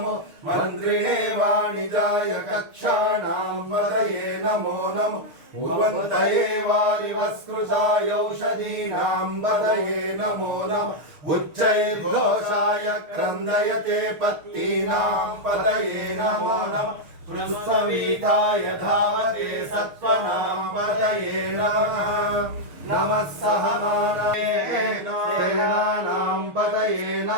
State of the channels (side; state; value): left; late; 6.6 ms